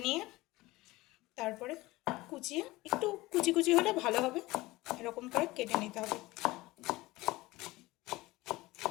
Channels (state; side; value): quieter; right; 19.7 dB